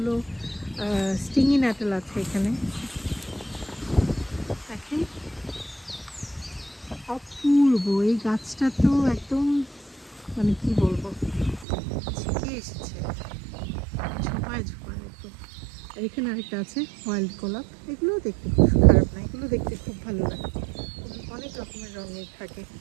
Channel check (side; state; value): left; drops out; at 11.7 s